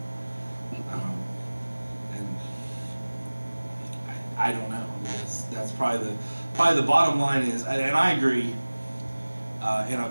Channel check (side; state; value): both; inverted; correlation -1.00